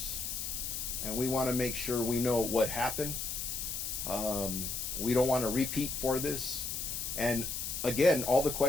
and we want to make sure we know what happened. We don't want to repeat for this. And again, all the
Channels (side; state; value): left; noise; hiss, 3 dB below the sound